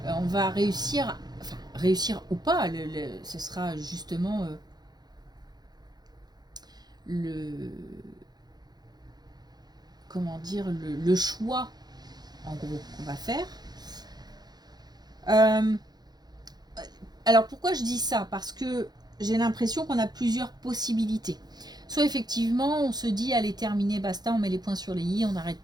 On va réussir, enfin réussir ou pas, ce sera justement comment dire, le choix en gros qu'on va faire. Alors pourquoi je dis ça? Parce que j'ai l'impression qu'on a plusieurs possibilités. Soit effectivement on se dit allez terminé, basta, on met les points sur les i, on arrête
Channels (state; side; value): late; left; 0.20 ms